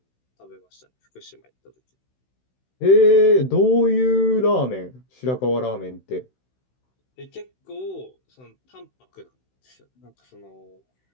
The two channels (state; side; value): late; right; 16 ms